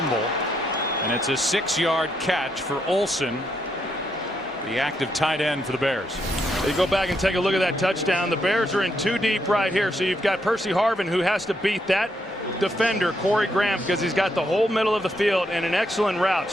And it's a 6-yard catch for Olsen, the active tight end for the Bears. You go back and take a look at that touchdown. The Bears are in 2 deep right here. So you've got Percy Harvin, who has to beat that defender, Corey Graham, because he's got the whole middle of the field and an excellent route,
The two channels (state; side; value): normal; both; correlation 0.77